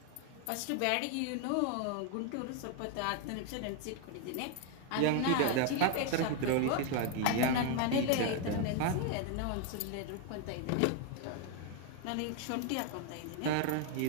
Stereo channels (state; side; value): different; both; correlation 0.01